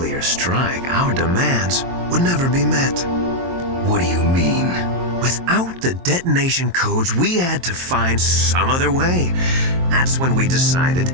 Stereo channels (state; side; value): late; left; 23 ms